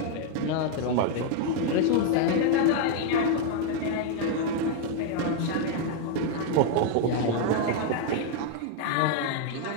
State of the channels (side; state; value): both; different; correlation 0.00